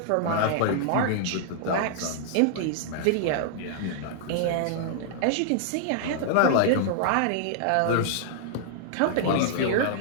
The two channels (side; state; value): both; different; correlation -0.01